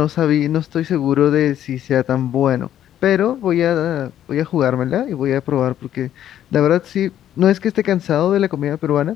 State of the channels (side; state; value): right; quieter; 11.2 dB